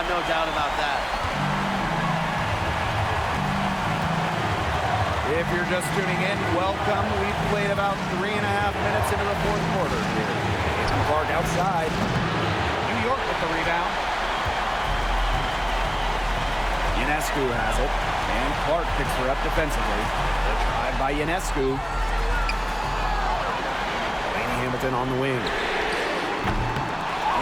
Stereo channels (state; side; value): identical; both; correlation 1.00